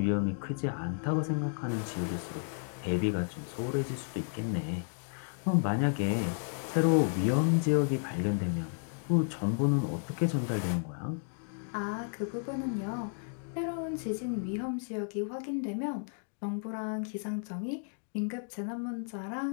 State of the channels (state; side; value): silent; right; 56 dB below the other